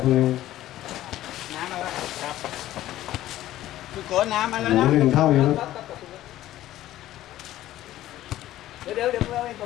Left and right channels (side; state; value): right; quieter; 14.2 dB